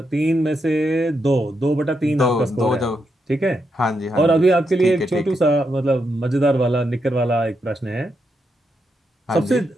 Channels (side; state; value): both; normal; correlation 0.82